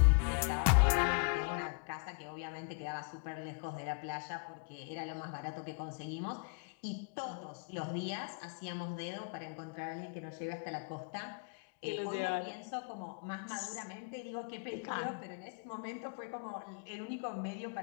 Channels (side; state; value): right; quieter; 36.1 dB